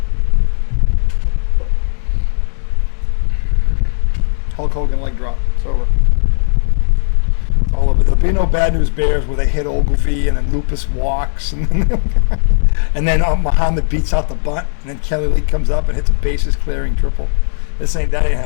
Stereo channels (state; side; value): silent; right; digital silence